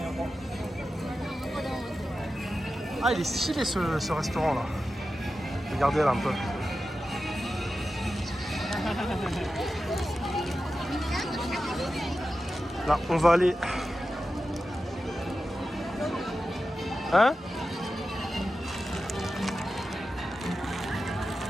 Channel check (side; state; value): both; normal; correlation 0.92